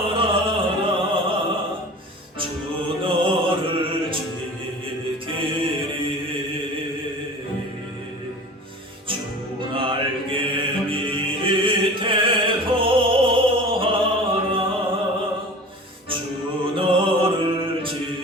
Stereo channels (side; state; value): both; normal; correlation 0.38